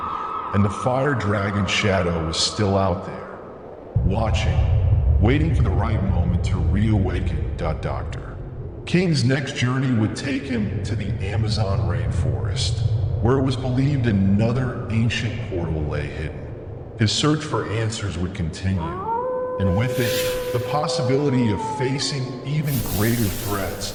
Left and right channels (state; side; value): identical; both; correlation 1.00